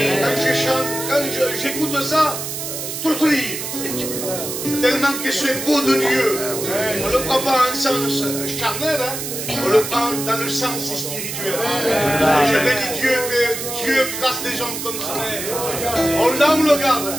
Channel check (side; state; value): right; noise; hiss, 6 dB below the sound